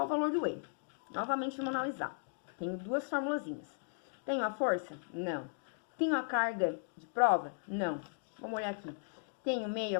o valor do E. Novamente, vamos analisar. Tenho duas formulazinhas. Tenho a força? Não. Tenho a carga de prova? Não. Vamos olhar aqui. Tenho meio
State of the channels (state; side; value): silent; right; digital silence